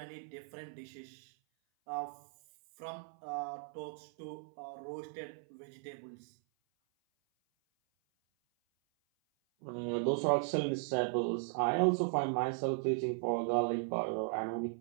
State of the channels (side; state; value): left; silent; 53 dB below the other